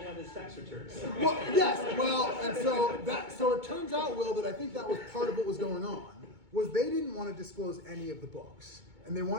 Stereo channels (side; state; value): left; late; 2.2 ms